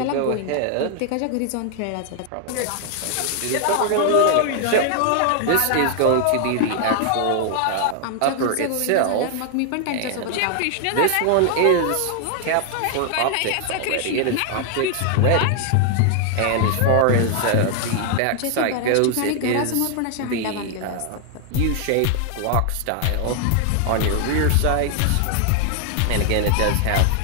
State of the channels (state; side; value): different; both; correlation 0.00